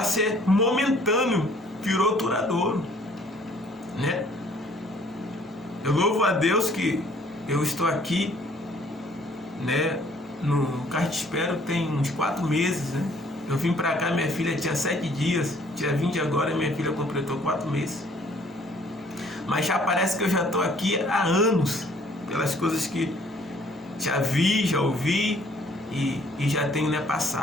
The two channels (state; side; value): normal; both; correlation 0.59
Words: ser momentâneo virou duradouro, né? Eu louvo a Deus que eu estou aqui, né, no Cartispero tem uns 4 meses, né? Eu vim para cá, minha filha tinha 7 dias, dia 20 agora minha filha completou 4 meses. Mas já parece que eu já estou aqui há anos, pelas coisas que já vi, já ouvi e já tenho, né,